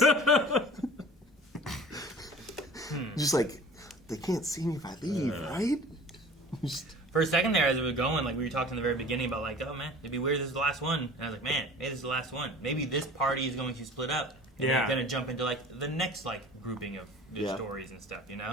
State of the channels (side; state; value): both; normal; correlation 0.43